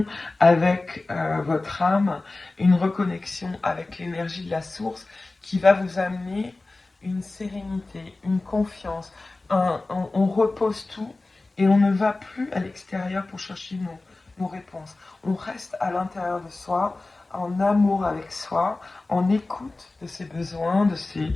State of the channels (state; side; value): quieter; right; 3.2 dB